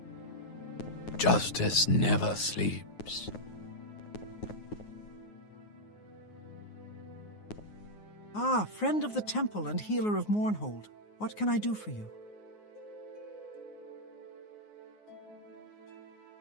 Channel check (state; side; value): late; right; 9.5 ms